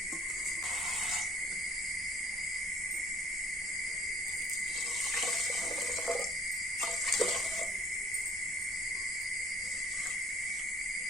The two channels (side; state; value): both; normal; correlation 0.55